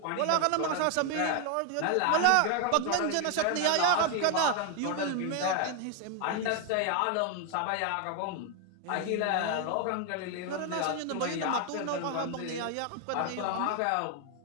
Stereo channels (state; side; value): different; both; correlation 0.01